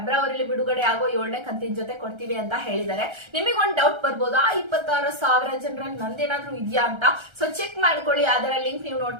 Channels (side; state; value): left; late; 1.3 ms